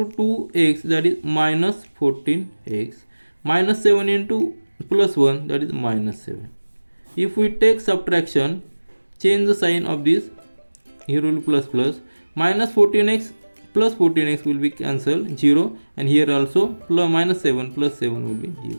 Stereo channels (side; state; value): both; inverted; correlation -1.00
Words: 2x, that is minus 14x. Minus 7 into plus 1, that is minus 7. If we take subtraction, change the sign of this, here will be plus plus. Minus 14x plus 14x will be cancelled, 0, and here also plus minus 7 plus 7 will be